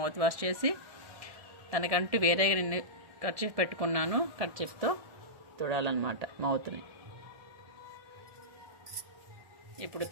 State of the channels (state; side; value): late; left; 1.7 ms